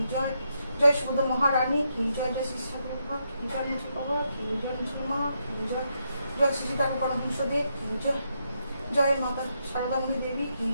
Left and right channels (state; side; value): inverted; both; correlation -0.80